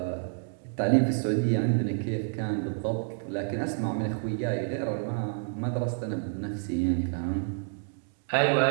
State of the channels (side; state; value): left; silent; digital silence